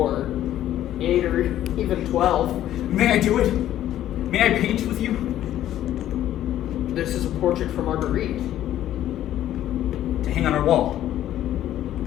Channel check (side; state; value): right; quieter; 12.4 dB